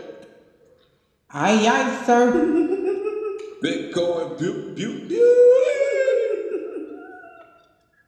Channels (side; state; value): both; identical; correlation 1.00